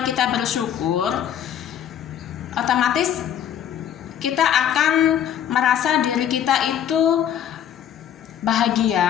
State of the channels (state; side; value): quieter; right; 9.8 dB